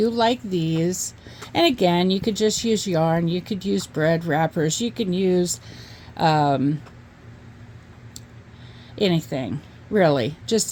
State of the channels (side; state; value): both; identical; correlation 1.00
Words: like these. And again, you could just use yarn, you could use bread wrappers, you can use anything, really,